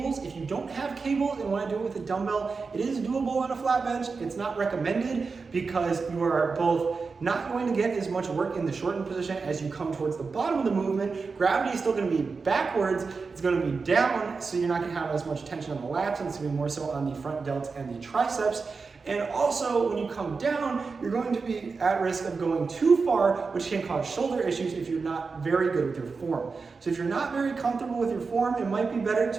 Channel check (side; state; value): left; quieter; 4.6 dB